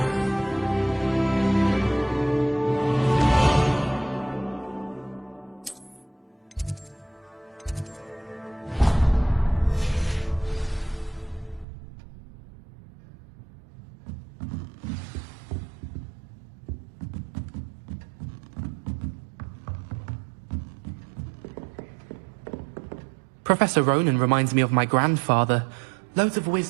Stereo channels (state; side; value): drops out; left; at 11.7 s